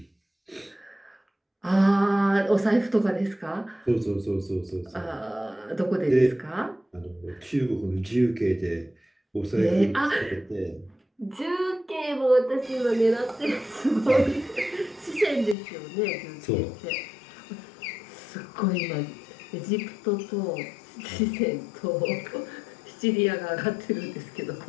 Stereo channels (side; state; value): right; drops out; at 15.6 s